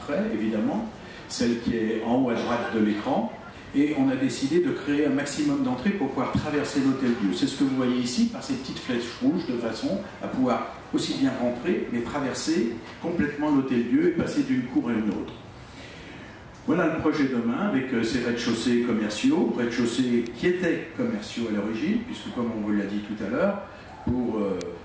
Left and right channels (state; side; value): identical; both; correlation 1.00